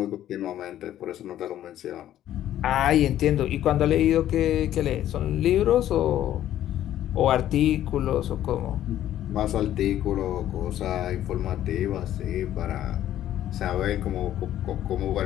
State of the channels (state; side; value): quieter; right; 12.2 dB